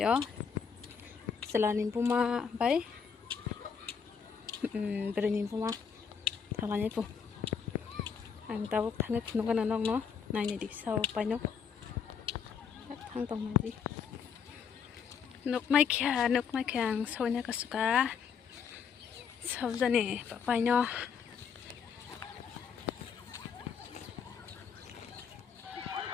ó selain puma bay berani puma thằng này pun anh ta bảo thằng này nó cái nào nó này đi sau bay nó thằng tông này đi nóc mai kia sau này có suka sau giờ này bay nó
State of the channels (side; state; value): right; quieter; 6.7 dB